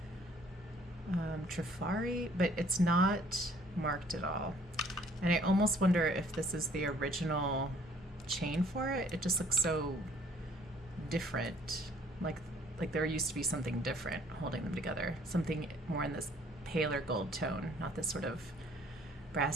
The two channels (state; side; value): normal; both; correlation 0.59